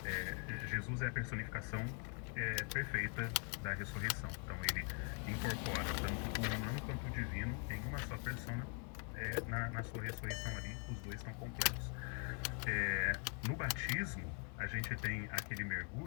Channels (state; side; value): quieter; right; 38.0 dB